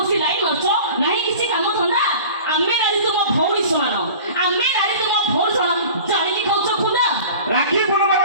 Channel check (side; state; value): both; inverted; correlation -0.41